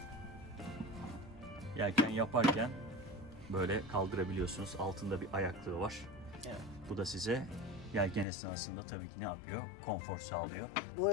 Yelken yaparken böyle kaldırabiliyorsunuz. Altında bir ayaklığı var. Evet. Bu da size yelken esnasında tabii ki ne yapıyor? Konfor sağlıyor. Bu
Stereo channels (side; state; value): right; drops out; at 8.2 s